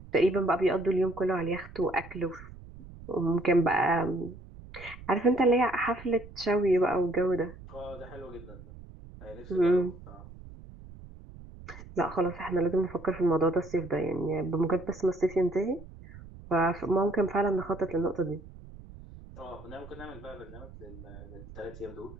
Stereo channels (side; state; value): right; noise; rumble, 17 dB below the sound